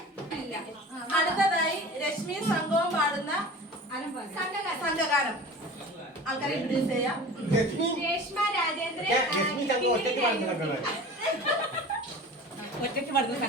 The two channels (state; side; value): normal; both; correlation 0.38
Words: അടുത്തതായി രശ്മി സംഘവും പാടുന്ന സംഘഗാനം ആൾക്കാരെ ഇൻട്രൊഡ്യൂസ് ചെയ്യാം. ഒറ്റയ്ക്ക് പാടുന്ന